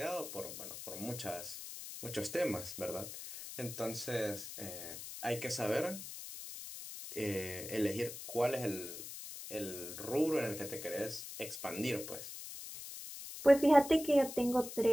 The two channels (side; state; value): left; noise; hiss, 10 dB below the sound